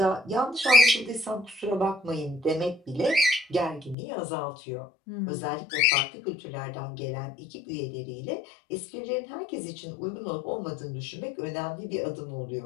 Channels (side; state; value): right; drops out; at 4.0 s